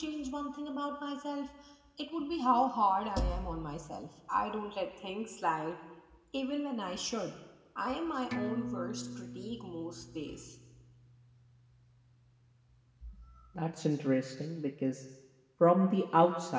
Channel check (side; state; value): both; identical; correlation 1.00